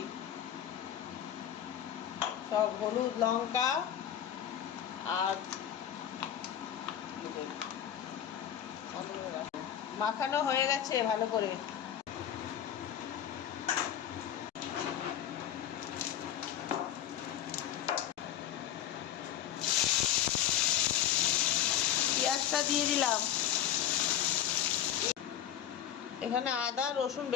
সব হলুদ লঙ্কা আর মাখানো হয়ে গেছে ভালো করে। পেঁয়াজটা দিয়ে দিলাম, এখানে আদা রসুন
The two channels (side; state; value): right; quieter; 10.5 dB